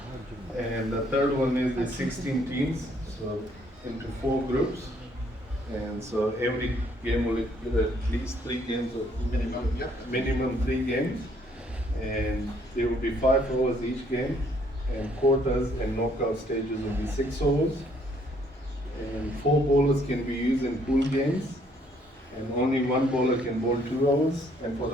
And the third one is the 16 teams, so into 4 groups. And so every game will get at least 3 games of minimum 3 games. And there will be 5 overs each game, and quarters and knockout stages will be 6 overs. And 4 bowlers can be used in pool games, and only 1 bowler can bowl 2 hours. And for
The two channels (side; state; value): both; normal; correlation 0.66